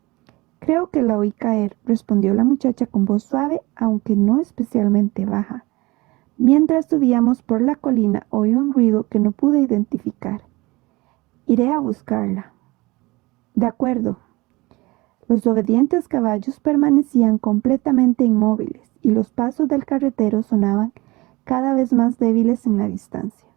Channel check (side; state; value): left; quieter; 22.3 dB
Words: «Creo que la oí caer», respondió la muchacha con voz suave, aunque no especialmente baja. «Mientras subíamos por la colina oí un ruido que no pude identificar. Iré a buscarla». «De acuerdo». Los obedientes caballos permanecían completamente inmóviles y los pasos del carretero sonaban cada vez más débiles en la distancia.